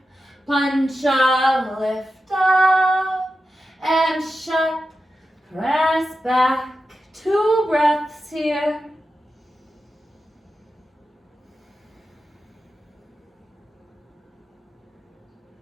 Pancha, lift up. And shut, press back. 2 breaths here.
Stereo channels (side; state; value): both; normal; correlation 0.91